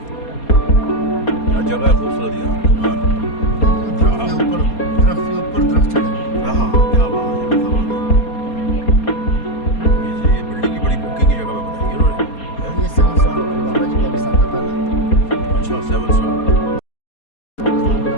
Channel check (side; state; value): right; late; 4.2 ms